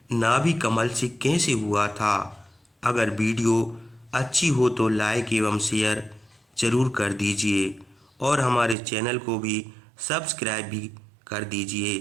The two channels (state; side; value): drops out; left; at 8.8 s